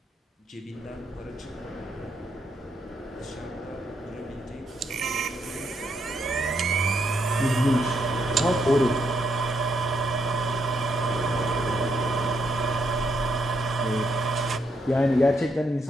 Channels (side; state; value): both; normal; correlation 0.77